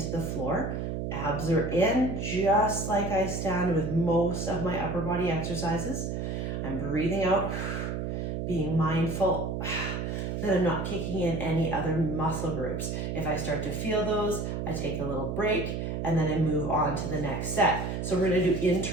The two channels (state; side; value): noise; right; hum, 3 dB below the sound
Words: the floor. Abs are in, just like I stand with most of my upper body exercises. I'm breathing out, being mindful that I'm not kicking in any other muscle groups. If I start to feel those, I take a little break and then I move on to the next set. So we're going to do